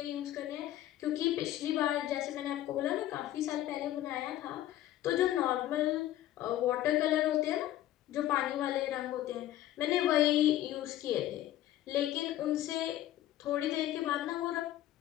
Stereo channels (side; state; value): right; quieter; 13.5 dB